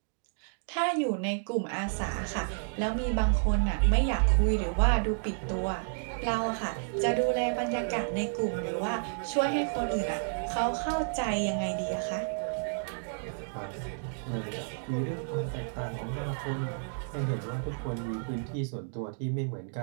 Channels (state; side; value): silent; left; digital silence